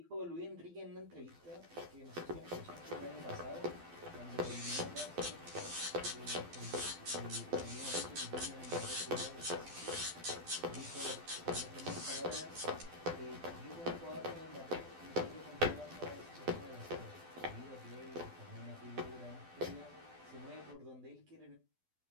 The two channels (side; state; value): left; late; 12 ms